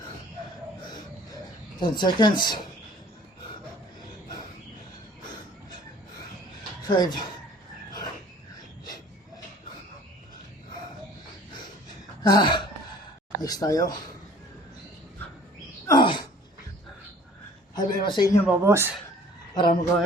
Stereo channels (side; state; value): both; normal; correlation 0.52